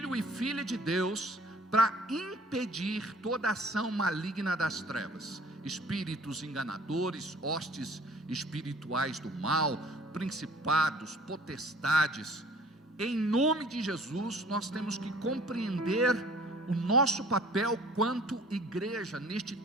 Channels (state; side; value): normal; both; correlation 0.51